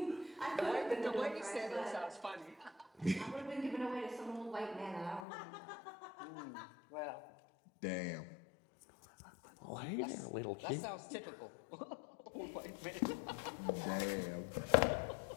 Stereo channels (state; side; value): drops out; right; at 5.2 s